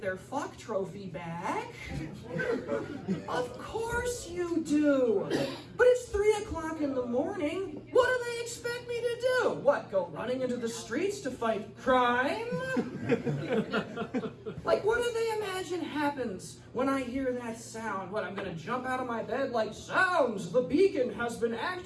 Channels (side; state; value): both; identical; correlation 1.00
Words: their fuck trophy back. Of course you do. But it's 3 o'clock in the morning. What do they expect me to do? What, go running into the streets to fight crime? Like, what do they imagine happens when I hear that sound? What, I'm gonna jump out of my bed like, "Sounds, the beacon has been